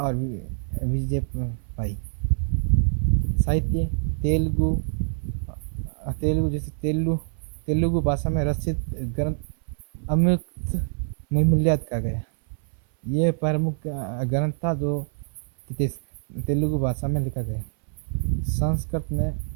और विजय पाई। साहित्य तेलुगु भाषा में रचित ग्रंथ अमृत मूल्याद कहा गया। ये प्रमुख ग्रंथ था जो तेलुगु भाषा में लिखा गया। संस्कृत में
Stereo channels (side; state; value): left; silent; 61 dB below the other